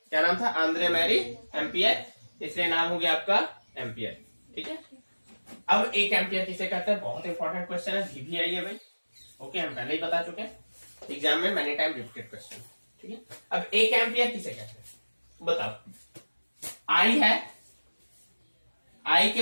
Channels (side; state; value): both; inverted; correlation -1.00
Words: क्या नाम था, आंद्रे मैरी एम्पियर, इसलिए नाम हो गया आपका एम्पियर। ठीक है, अब एक एम्पियर किसे कहते हैं, बहुत इंपॉर्टेंट क्वेश्चन है, VVI है भाई। ओके, हम पहले ही बता चुके हैं, एग्जाम में मैनी टाइम रिपीटेड क्वेश्चन। ठीक है, अब एक एम्पियर किसे कहते हैं बताओ। आई है, आई के